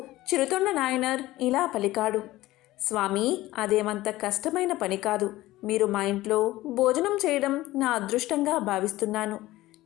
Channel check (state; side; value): quieter; right; 17.1 dB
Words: చిరుతొండ నాయనర్ ఇలా పలికాడు. స్వామి, అదేమంత కష్టమైన పని కాదు. మీరు మా ఇంట్లో భోజనం చేయడం నా అదృష్టంగా భావిస్తున్నాను.